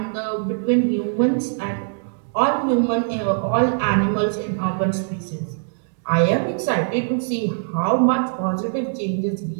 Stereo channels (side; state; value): left; silent; digital silence